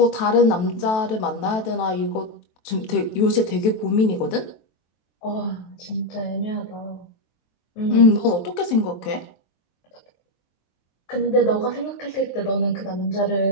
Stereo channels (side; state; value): right; late; 23 ms